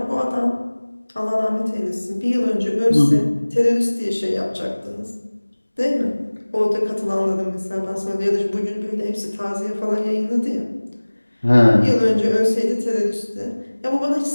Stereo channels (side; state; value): both; inverted; correlation -1.00